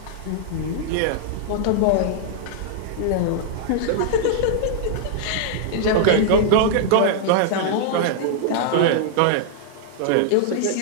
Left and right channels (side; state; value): both; different; correlation -0.01